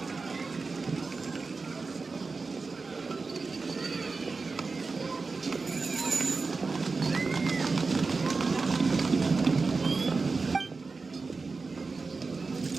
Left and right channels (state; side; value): quieter; left; 4.2 dB